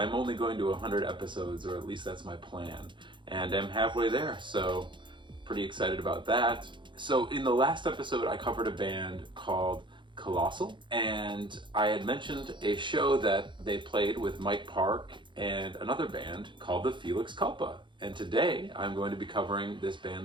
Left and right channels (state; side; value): late; left; 0.23 ms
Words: only going to 100 episodes, or at least that's my plan. And I'm halfway there, so pretty excited about that. So in the last episode, I covered a band called Colossal, and I had mentioned a show that they played with Mike Park and another band called the Felix Culpa. And today I'm going to be covering this band,